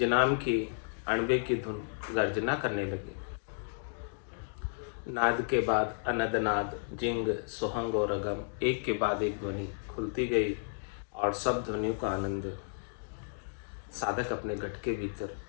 नाम की अणबे की धुन गर्जना करने लगी। नाद के बाद अनद नाद, जिंग, सोहंग और अगम एक के बाद एक ध्वनि खुलती गई और सब ध्वनियों का आनंद साधक अपने घट के भीतर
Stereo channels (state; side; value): silent; right; digital silence